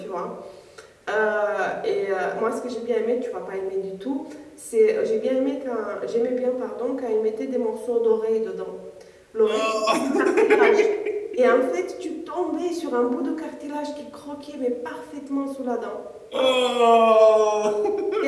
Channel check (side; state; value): both; identical; correlation 1.00